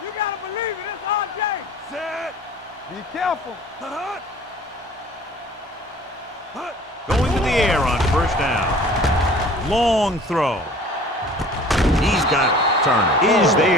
You gotta believe it. It's RJ. Set. Be careful. Going to the air on first down. Long throw. He's got it. Turner is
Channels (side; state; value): both; normal; correlation 0.47